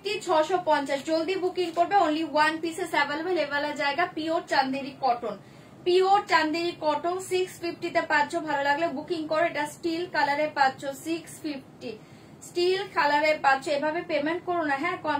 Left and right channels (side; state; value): both; identical; correlation 1.00